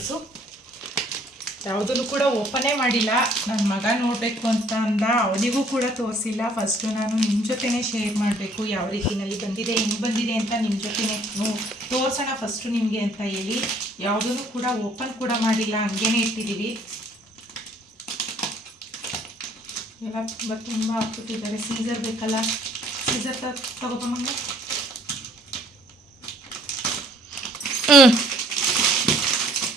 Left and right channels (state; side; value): normal; both; correlation 0.61